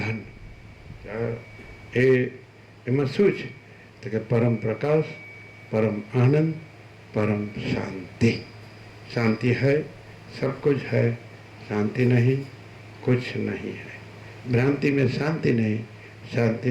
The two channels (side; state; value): both; identical; correlation 1.00